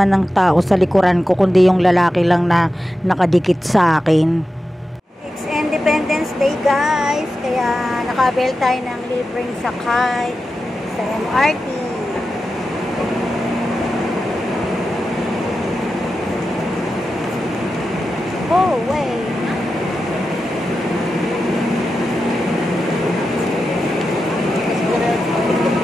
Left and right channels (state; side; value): normal; both; correlation 0.91